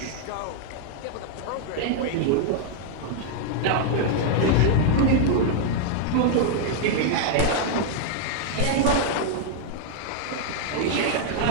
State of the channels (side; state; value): both; different; correlation 0.00